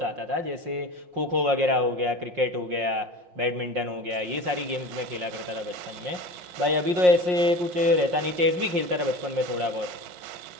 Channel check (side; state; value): left; late; 5.6 ms